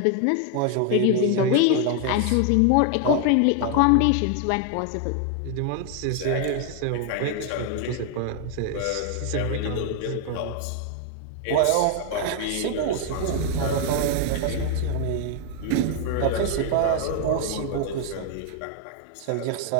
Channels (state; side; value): different; both; correlation 0.00